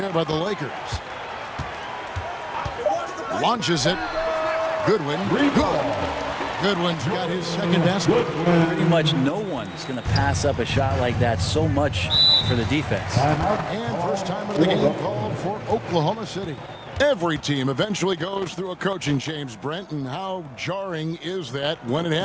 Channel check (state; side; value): identical; both; correlation 1.00